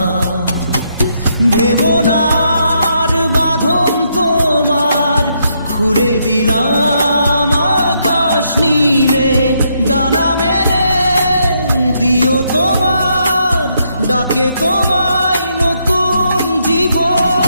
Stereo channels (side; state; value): both; inverted; correlation -0.76